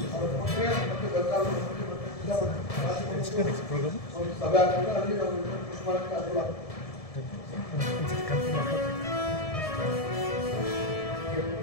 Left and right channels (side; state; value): right; late; 1.7 ms